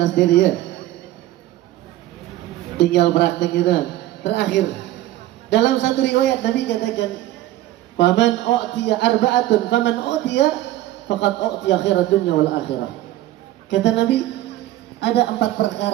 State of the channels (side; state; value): left; quieter; 15.0 dB